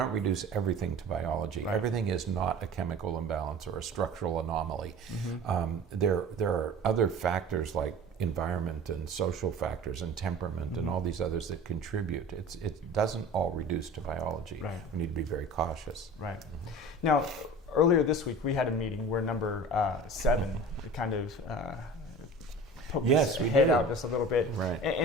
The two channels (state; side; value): normal; both; correlation 0.39